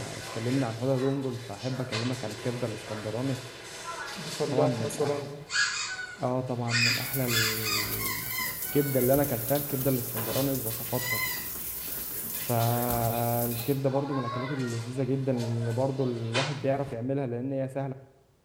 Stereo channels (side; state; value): both; identical; correlation 1.00